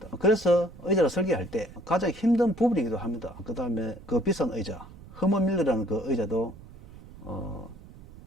그래서 의자를 설계할 때 가장 힘든 부분이기도 합니다. 그 다음에 그 비싼 의자 허먼밀러라는 그 의자도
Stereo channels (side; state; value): right; noise; rumble, 19 dB below the sound